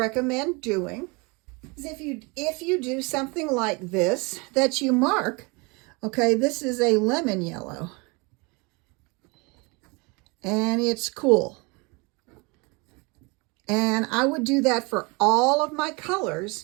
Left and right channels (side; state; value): left; quieter; 28.6 dB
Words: doing is if you do something like this, that you mark, okay, this is a lemon yellow, and it's cool. And I would do that for all of my